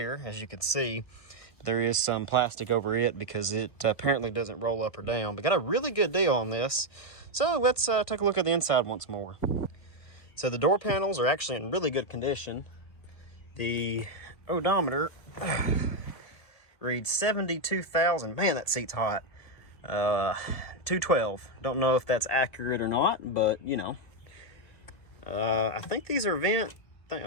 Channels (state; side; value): late; right; 1.8 ms